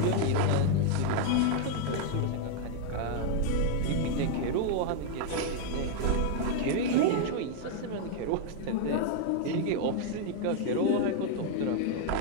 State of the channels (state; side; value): different; both; correlation 0.00